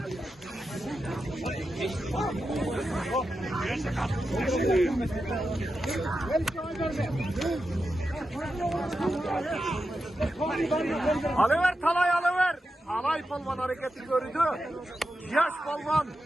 Alıver talay alıver. Alay palvan hareketi gördü. Yaş palvan.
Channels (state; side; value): normal; both; correlation 0.89